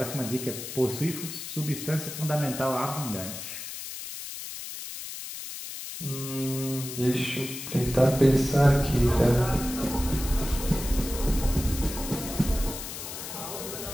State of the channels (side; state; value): left; noise; hiss, 9 dB below the sound